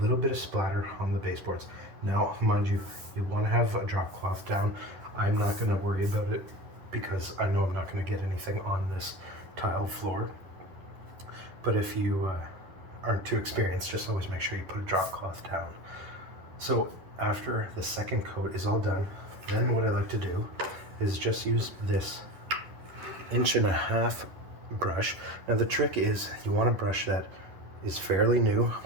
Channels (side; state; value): left; late; 10 ms